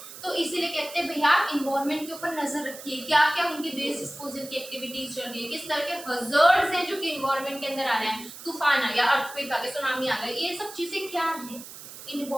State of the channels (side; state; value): right; noise; hiss, 14 dB below the sound